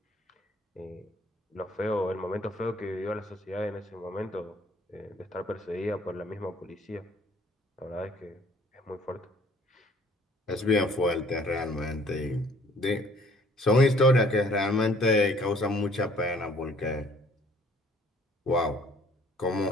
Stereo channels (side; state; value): both; normal; correlation 0.58